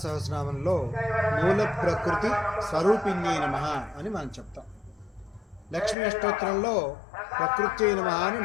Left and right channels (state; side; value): drops out; right; at 6.0 s